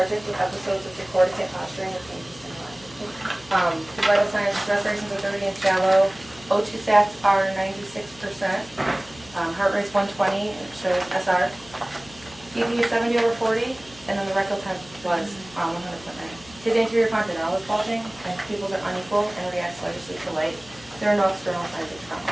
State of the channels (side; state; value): left; noise; hum, 22 dB below the sound